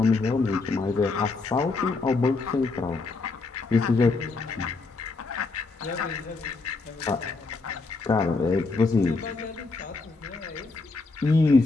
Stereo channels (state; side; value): quieter; right; 3.8 dB